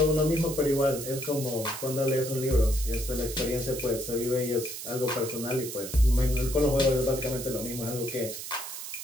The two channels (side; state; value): right; noise; hiss, 8 dB below the sound